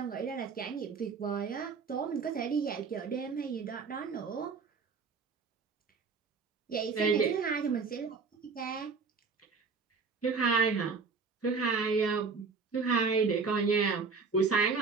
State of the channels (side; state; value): left; quieter; 4.9 dB